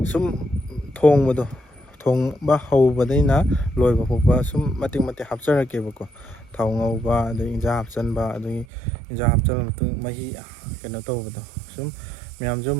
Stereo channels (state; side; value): drops out; left; at 8.7 s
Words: ꯁꯨꯝ ꯊꯣꯡꯕ ꯍꯧꯕꯗꯩꯅ ꯂꯣꯏꯕ ꯐꯥꯎꯕ ꯁꯨꯝ ꯃꯇꯦꯛ ꯃꯇꯦꯛ ꯍꯥꯞꯆꯔꯛꯀꯦꯕꯀꯣ ꯊꯥꯎ ꯉꯧꯕ ꯑꯗꯒꯤ ꯏꯟꯖꯥꯡ ꯍꯥꯞꯆꯤꯟꯕ ꯑꯗꯒꯤ ꯏꯟꯖꯥꯡ ꯍꯥꯞꯆꯤꯜꯂ ꯃꯇꯨꯡ ꯃꯍꯤ ꯀꯩꯅꯣ ꯇꯧꯕꯗꯣ ꯁꯨꯝ ꯃꯌꯥꯝꯁꯨ